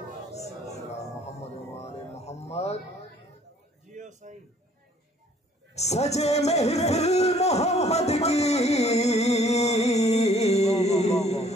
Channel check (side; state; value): both; normal; correlation 0.58